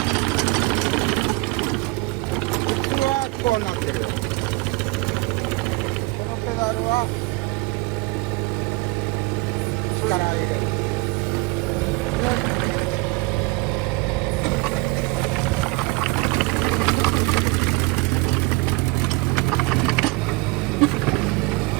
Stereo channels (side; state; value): left; quieter; 23.7 dB